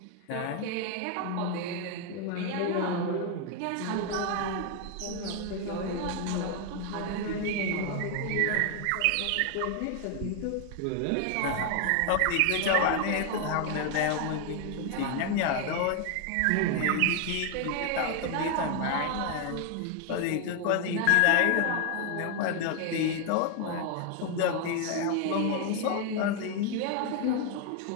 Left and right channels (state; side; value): different; both; correlation 0.01